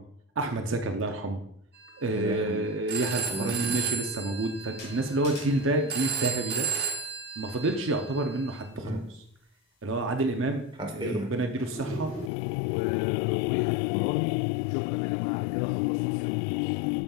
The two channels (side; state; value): right; drops out; at 12.3 s